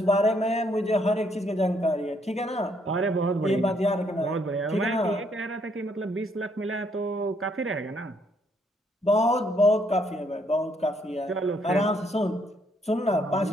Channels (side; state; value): both; normal; correlation 0.70